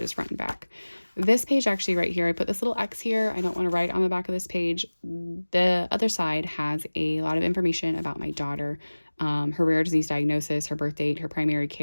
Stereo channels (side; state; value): both; inverted; correlation -1.00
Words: front and back. This page actually right here, I put this little X here. I don't want to write on the back of this page. The other side has a lot of information about my daughter, her rare disease diagnosis, her birth date, her primary